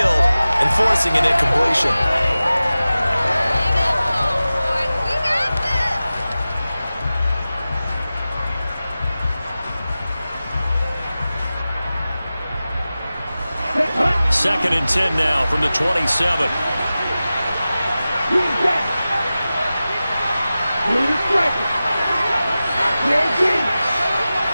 and forcing an incompletion. Second and 10 now from the 27.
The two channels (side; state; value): both; inverted; correlation -0.95